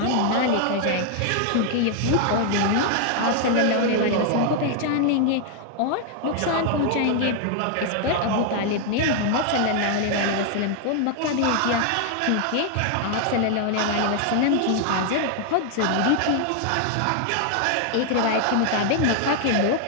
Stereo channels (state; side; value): different; both; correlation 0.00